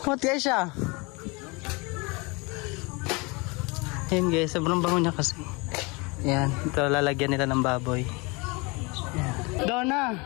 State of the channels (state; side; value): quieter; right; 27.5 dB